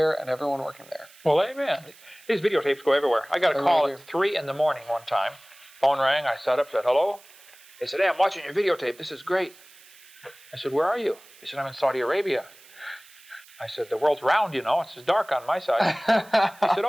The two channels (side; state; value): right; noise; hiss, 24 dB below the sound